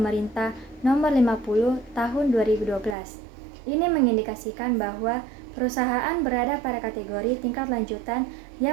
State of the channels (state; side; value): drops out; left; at 3.0 s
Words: nomor 50 tahun 2012. Ini mengindikasikan bahwa perusahaan berada pada kategori tingkat lanjutan